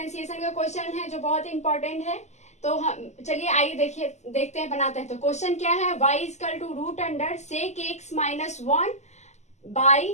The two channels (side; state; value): right; late; 0.33 ms